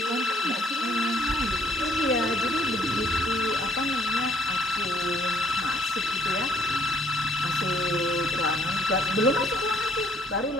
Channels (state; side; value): normal; both; correlation 0.60